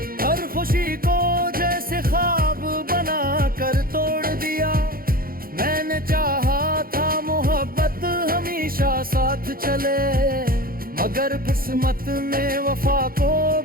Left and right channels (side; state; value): left; late; 0.42 ms